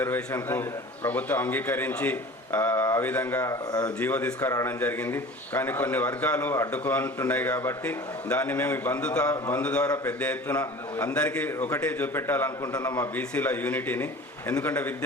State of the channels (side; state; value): both; normal; correlation 0.40